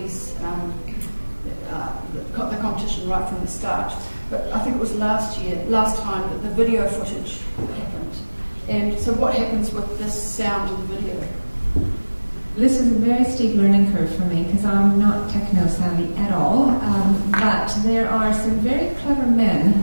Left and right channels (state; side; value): inverted; both; correlation -1.00